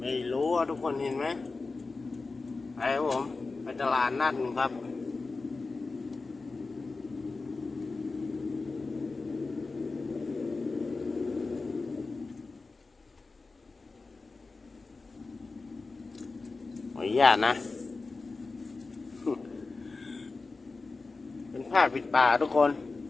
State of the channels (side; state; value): right; quieter; 3.9 dB